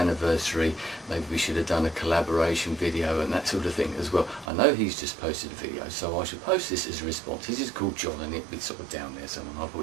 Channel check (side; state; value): left; drops out; at 4.5 s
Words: maybe we should have done a collaboration video and that sort of thing as well. I know he's just posted a video, so I should post this as a response. This is called John, and it'll be sort of down there somewhere. I'll